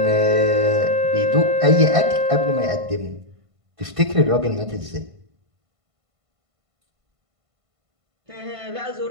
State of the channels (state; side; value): late; left; 1.5 ms